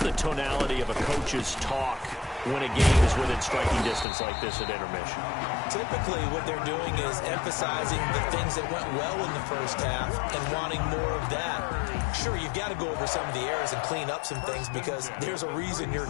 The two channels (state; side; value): drops out; right; at 4.0 s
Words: tonality of a coach's talk when a game is within striking distance like this at intermission? Typically, what they're doing is emphasizing the things that went well in the first half and wanting more of that. Sure, you've got to go over some of the errors and clean up some things because there's a reason you're